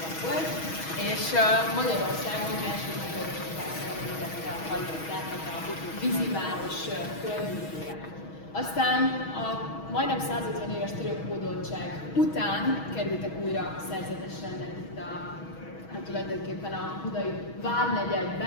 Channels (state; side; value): late; right; 6.3 ms